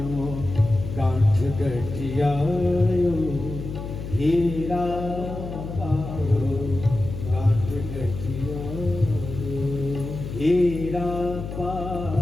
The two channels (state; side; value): noise; left; hum, 8 dB below the sound